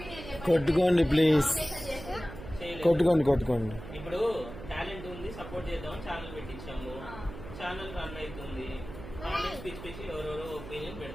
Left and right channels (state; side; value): noise; right; hum, 12 dB below the sound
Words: కొట్టుకోండి ప్లీజ్, కొట్టుకోండి. ఇప్పుడు టాలెంట్ ఉంది, సపోర్ట్ చేద్దామని ఛానల్ పెట్టించాము. ఛానల్ రన్ అవుతుంది. కామెంట్స్ పిచ్చి పిచ్చి ఎవరెవరో ఒపీనియన్